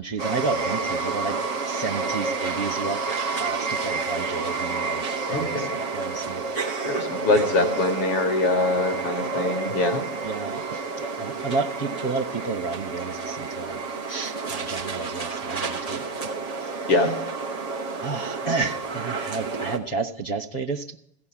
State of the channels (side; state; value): right; late; 7.2 ms